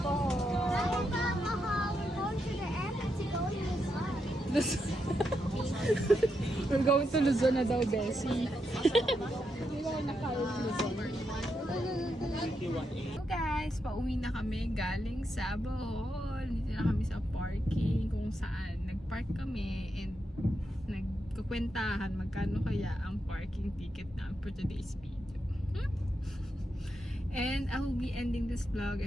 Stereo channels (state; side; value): normal; both; correlation 0.83